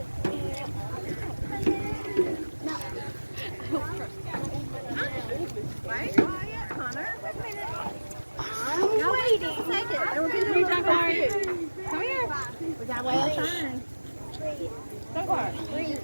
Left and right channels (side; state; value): both; inverted; correlation -1.00